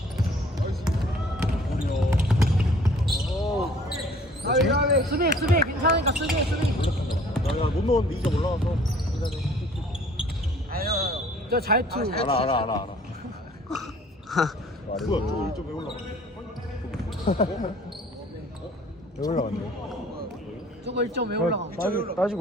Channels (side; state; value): both; normal; correlation 0.54